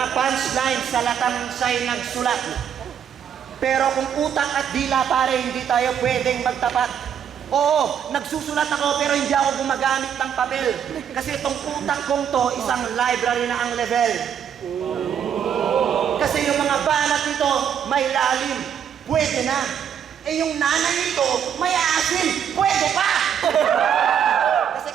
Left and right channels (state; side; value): quieter; left; 8.5 dB